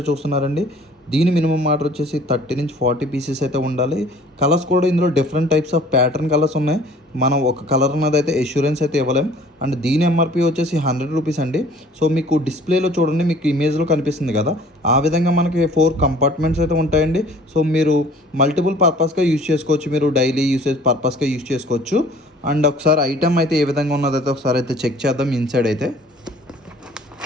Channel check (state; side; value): normal; both; correlation 0.52